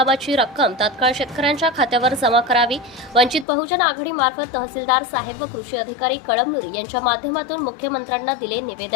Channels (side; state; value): right; drops out; at 3.5 s